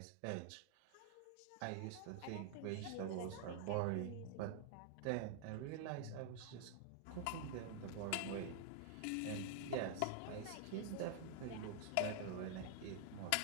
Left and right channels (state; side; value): different; both; correlation 0.00